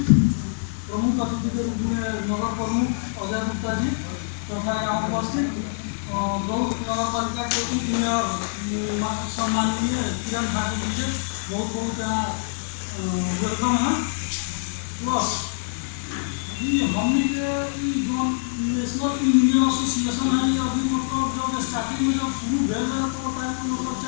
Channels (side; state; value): right; silent; digital silence